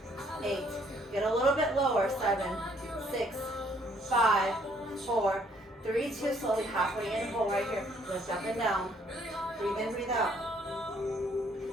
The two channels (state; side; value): normal; both; correlation 0.65